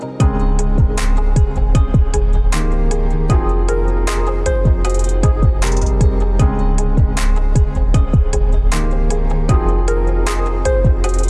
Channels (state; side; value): identical; both; correlation 1.00